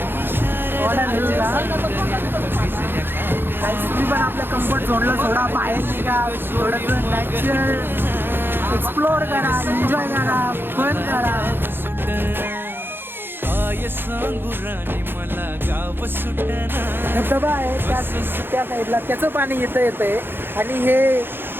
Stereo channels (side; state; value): left; late; 0.10 ms